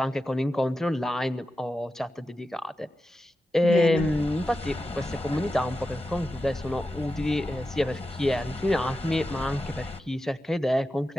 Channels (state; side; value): normal; both; correlation 0.91